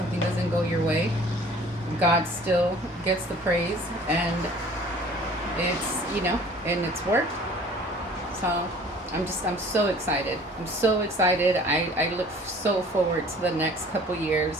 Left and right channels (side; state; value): both; normal; correlation 0.49